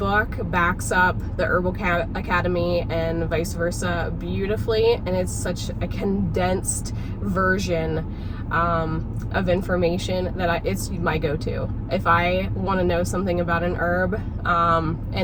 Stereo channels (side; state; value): both; identical; correlation 1.00